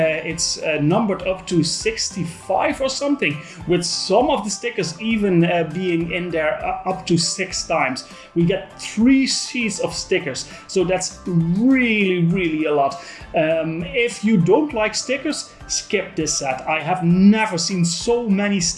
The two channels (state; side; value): identical; both; correlation 1.00